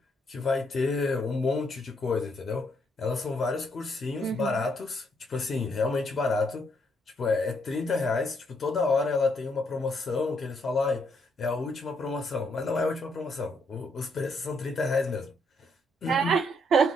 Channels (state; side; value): normal; both; correlation 0.74